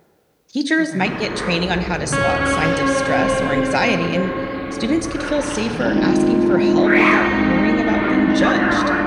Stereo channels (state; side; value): identical; both; correlation 1.00